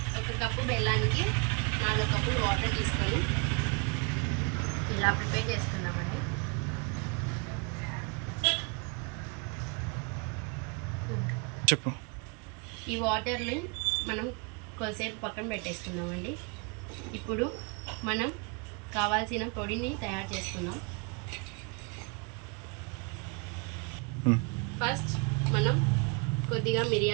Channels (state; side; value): quieter; left; 33.4 dB